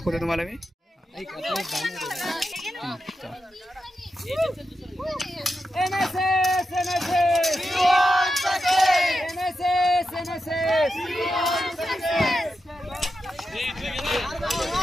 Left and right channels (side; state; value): both; normal; correlation 0.88